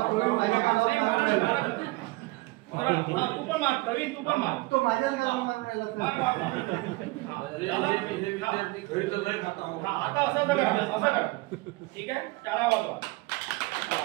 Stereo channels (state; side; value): quieter; left; 22.2 dB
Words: तू पण मार प्रवीण, तू पण मार. तो माझ्याच आता असं करा. ठीक आहे, टाळा वाजवा.